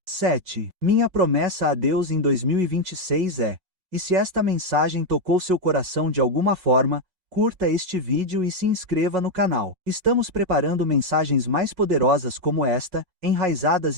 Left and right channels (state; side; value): late; left; 5.5 ms